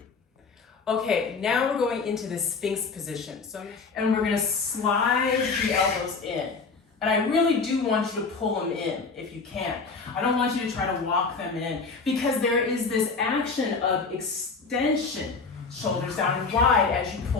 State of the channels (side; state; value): right; quieter; 4.6 dB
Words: Okay, now we're going into the Sphinx position. And we're gonna slide the elbows in. And I really do want you to pull them in if you can. I don't want you to try to walk them in because there is this action of extension, shoulders down and wide as you